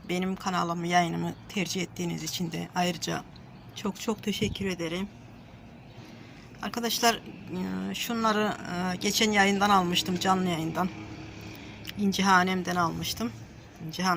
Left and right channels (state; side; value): identical; both; correlation 1.00